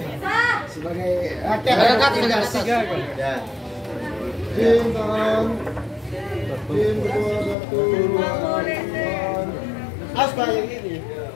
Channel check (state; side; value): drops out; right; at 7.6 s